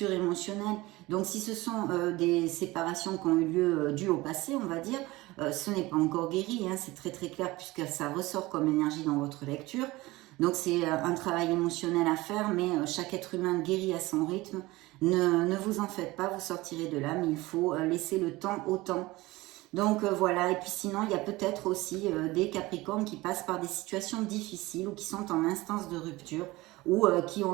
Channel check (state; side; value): quieter; left; 20.1 dB